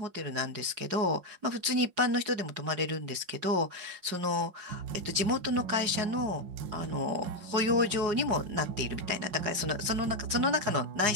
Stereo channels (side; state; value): left; late; 5.5 ms